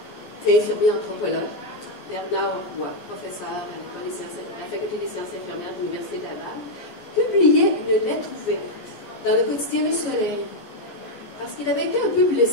infirmier anthropologue, Bernard Roy, professeur à la Faculté des sciences infirmières de l'Université de Laval, publiait une lettre ouverte dans le quotidien Le Soleil, parce qu'il avait été un peu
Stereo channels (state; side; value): late; right; 15 ms